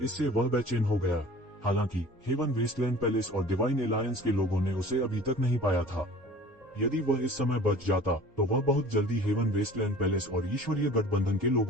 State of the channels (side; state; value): both; normal; correlation 0.45